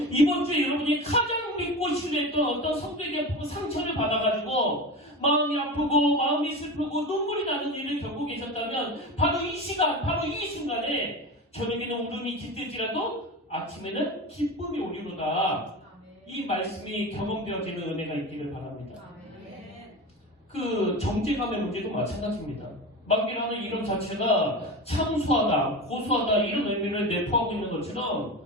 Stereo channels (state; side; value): normal; both; correlation 0.27